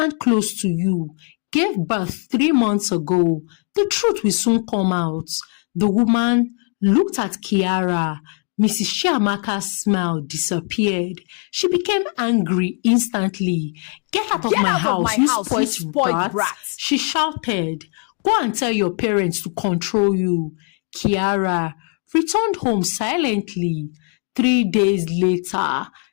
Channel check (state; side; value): quieter; right; 39.5 dB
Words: close to you gave birth 3 months ago. The truth will soon come out. The woman looked at Kiara. Mrs. Chiamaka's smile disappeared. She became angry instantly. Get out of my house, you spoiled brat! She shouted. Go and tell your parents to control you. Kiara returned home silently. 3 days later,